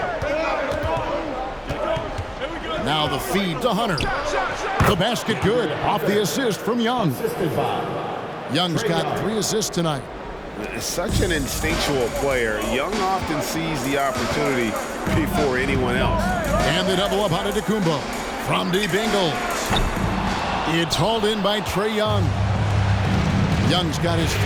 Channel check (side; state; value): both; identical; correlation 1.00